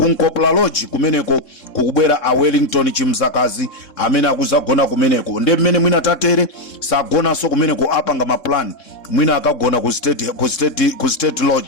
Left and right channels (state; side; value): late; right; 3.7 ms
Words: Nkopla Lodge kumeneko kukubwera Wellington Chimdzakazi amene akuzagona kumeneko. Nde mmene mwina tatere sagonanso kumeneko apanga ma plan mwina akagona ku state